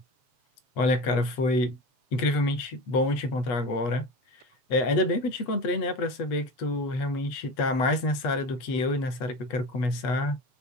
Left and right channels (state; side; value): late; right; 8.1 ms